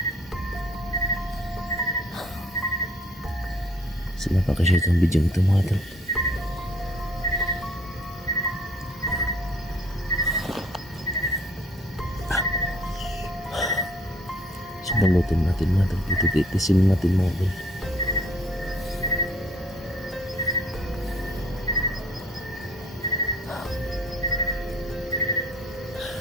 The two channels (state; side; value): normal; both; correlation 0.57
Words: So, napakashare itong video ito mga ito. So, balutin natin mga ito. Ito, titisin natin mga ito.